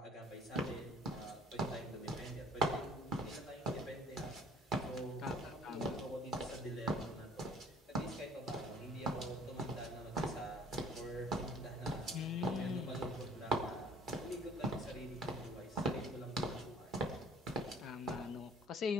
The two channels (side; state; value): both; normal; correlation 0.55